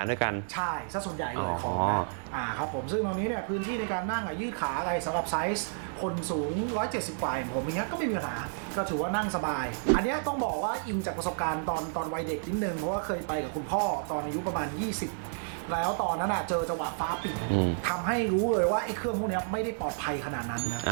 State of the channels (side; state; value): left; silent; digital silence